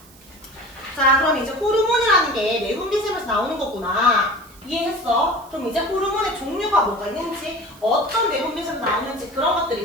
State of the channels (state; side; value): noise; right; hiss, 25 dB below the sound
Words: 자, 그럼 이제 호르몬이라는 게 내분비샘에서 나오는 거구나. 이해했어? 그럼 이제 호르몬의 종류가 뭐가 있는지, 어떤 내분비샘에서 나오는지 그런 것들이